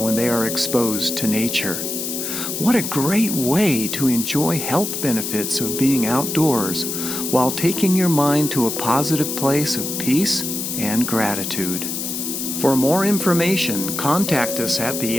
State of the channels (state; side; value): noise; left; hiss, 4 dB below the sound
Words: they are exposed to nature. What a great way to enjoy health benefits of being outdoors while taking your mind to a positive place of peace and gratitude. For more information, contact us at the